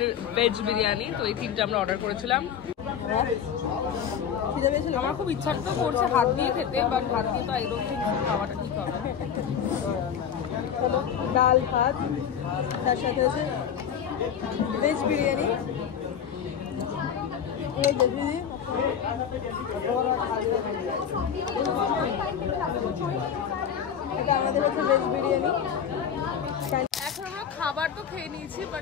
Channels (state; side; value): quieter; right; 8.1 dB